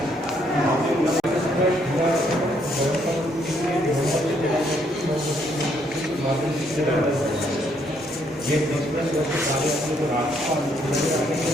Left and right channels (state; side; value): normal; both; correlation 0.70